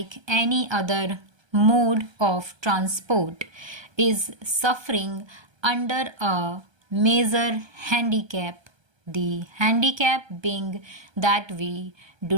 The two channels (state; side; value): late; left; 1.3 ms